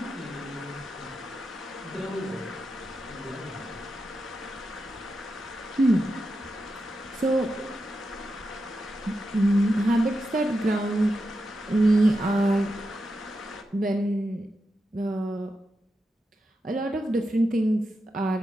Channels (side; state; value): both; normal; correlation 0.88